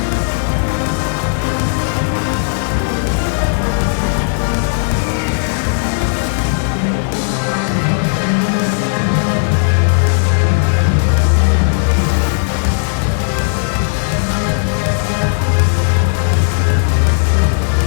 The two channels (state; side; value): silent; right; digital silence